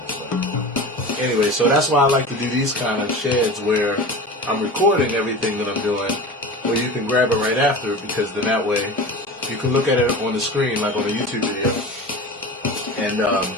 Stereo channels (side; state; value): both; normal; correlation 0.32